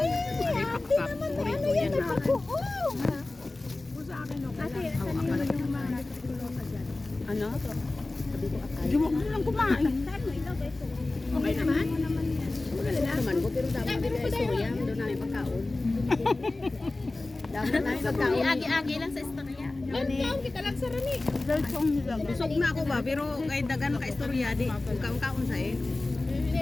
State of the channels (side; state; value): right; quieter; 3.0 dB